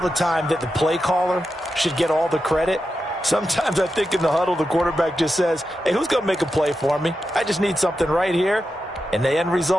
the time that the play caller should get all the credit. Sometimes I think in the huddle, the quarterback just says, hey, who's going to make a play for me? I just need something right here. And the end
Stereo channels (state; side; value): normal; both; correlation 0.89